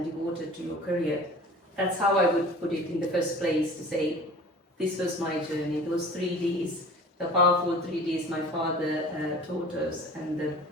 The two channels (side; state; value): both; normal; correlation 0.43